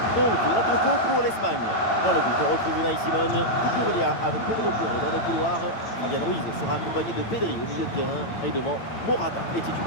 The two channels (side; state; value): right; late; 8.9 ms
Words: Donc la compo pour l'Espagne. Dans le but, on retrouve Unai Simon, Cucurella avec Pedro Porro dans les couloirs. Fabian Ruiz sera accompagné de Pedri au milieu de terrain et devant Morata est